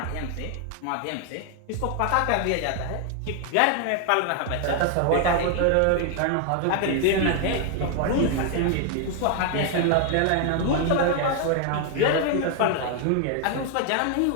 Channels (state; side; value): different; both; correlation 0.00